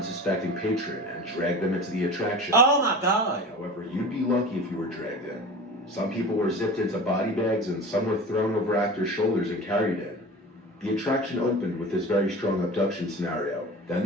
patron and dragged them into the attraction. Oh my God. However, you'd be lucky if you were dragged in. Some people were zipped into body bags and some were thrown over actors' shoulders and carried in. The attraction opened with this very strong abduction scenario. Then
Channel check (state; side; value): normal; both; correlation 0.35